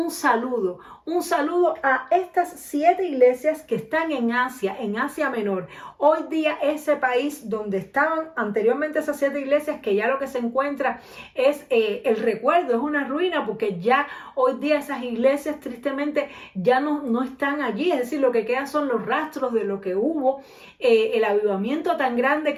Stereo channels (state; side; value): identical; both; correlation 1.00